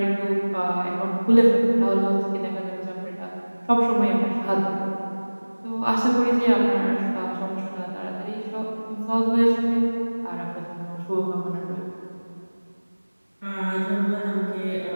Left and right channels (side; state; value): both; inverted; correlation -1.00